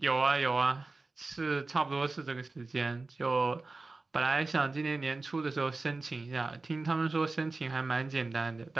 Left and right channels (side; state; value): left; quieter; 3.5 dB